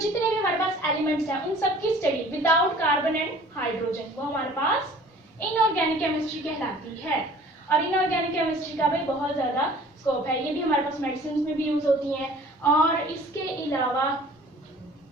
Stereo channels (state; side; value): normal; both; correlation 0.49